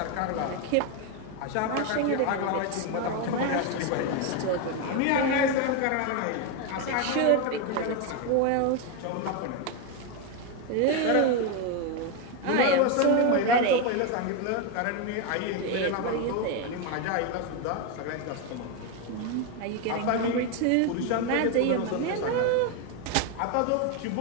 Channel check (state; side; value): different; both; correlation 0.02